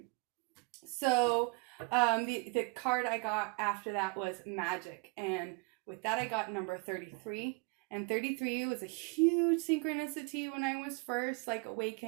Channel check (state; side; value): quieter; left; 30.0 dB